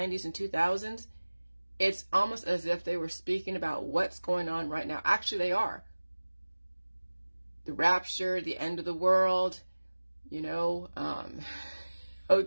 and 2000s, it's almost as if they were speaking about what's going on right now. Actually, they are. The rapture, the end of the world,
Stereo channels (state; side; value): inverted; both; correlation -1.00